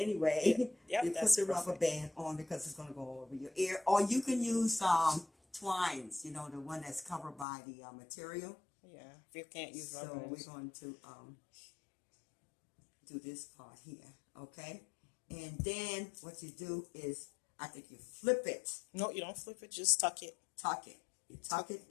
Yep, you put that's the rubber perfect. band on because it's going to go over your ear. Or you can use twines, you know, the one that's covered by the material. Yeah, if you can't use So rubber we're bands. going to do this part here, okay? And then what you do is, I think you flip it, No, you don't flip it. Just tuck it. tuck it. You tuck it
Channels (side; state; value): right; drops out; at 7.5 s